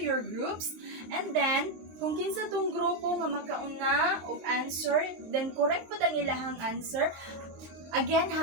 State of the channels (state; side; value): late; left; 23 ms